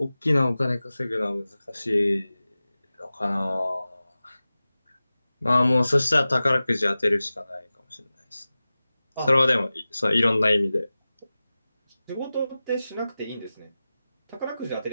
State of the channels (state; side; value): inverted; both; correlation -0.96